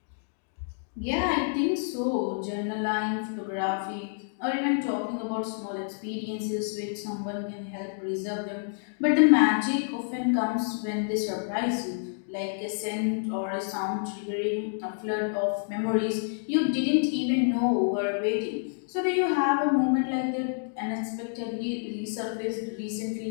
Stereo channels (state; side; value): silent; right; digital silence